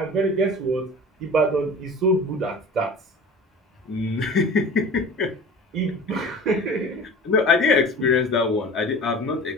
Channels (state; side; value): normal; both; correlation 0.38